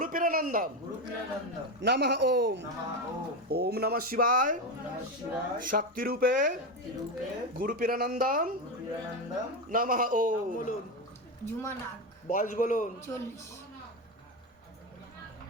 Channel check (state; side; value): normal; both; correlation 0.15